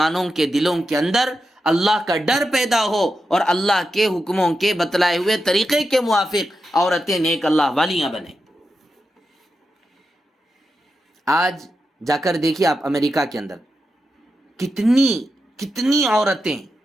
کے دلوں کے اندر اللہ کا ڈر پیدا ہو اور اللہ کے حکموں کے بتلائے ہوئے طریقے کے موافق عورتیں نیک اللہ والیاں بنیں. آج جا کر دیکھیے آپ امریکہ کے اندر کتنی عورتیں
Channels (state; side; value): normal; both; correlation 0.88